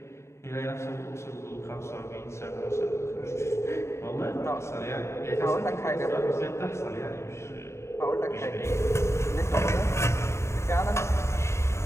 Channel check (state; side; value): late; right; 0.13 ms